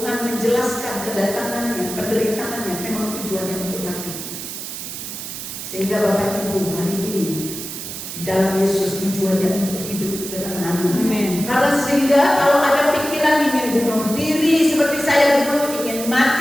menjelaskan kedatangannya, penderitaannya memang tujuannya untuk mati. Sehingga Bapak Ibu hari ini di dalam Yesus tujuannya untuk hidup. Amin. Karena sehingga kalau ada pikiran ingin bunuh diri seperti saya dulu, ingin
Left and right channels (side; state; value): right; noise; hiss, 8 dB below the sound